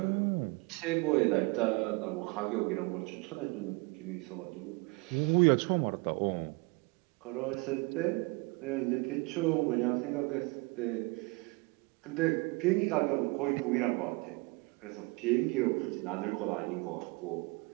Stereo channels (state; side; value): quieter; left; 27.3 dB